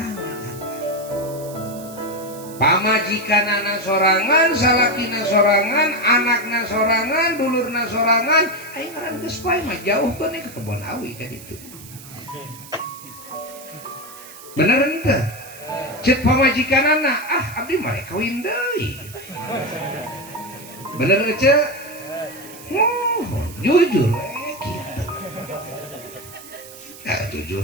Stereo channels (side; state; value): right; noise; hiss, 17 dB below the sound